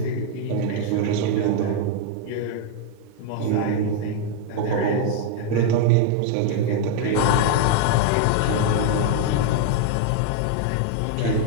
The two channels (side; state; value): both; different; correlation 0.00